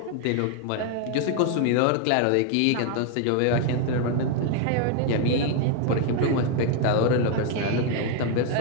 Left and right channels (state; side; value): different; both; correlation 0.01